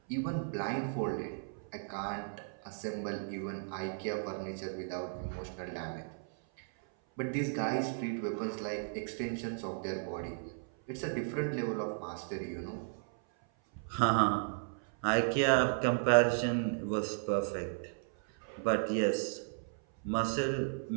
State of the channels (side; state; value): left; silent; 54 dB below the other